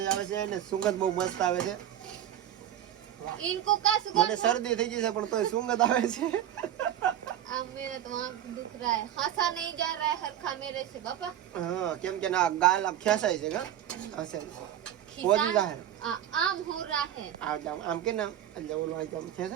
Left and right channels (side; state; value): left; quieter; 11.1 dB